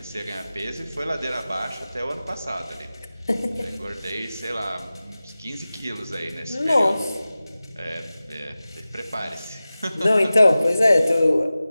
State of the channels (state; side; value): inverted; both; correlation -0.96